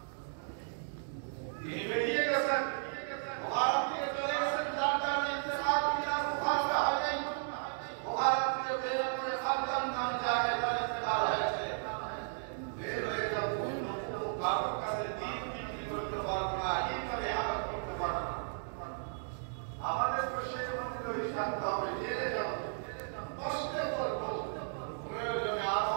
তিনি বেরিয়ে গেছেন বুখারী থেকে চলে গেছেন যার কারণে ইন্তেকাল মিনাল বুখারী হয় বুখারী থেকে বের করে খালদান নামে জায়গায় তার ইন্তেকাল হয়েছে বের হয়ে যাব কারোর কাছে দিন বিক্রি করতে পারবো না এইভাবে আঘাত করতে পারবো না আমাদের তো সেই অনুযায়ী থাকতে হবে জেলে যাব কষ্টে করবো প্রয়োজনে আরো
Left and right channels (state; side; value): silent; left; digital silence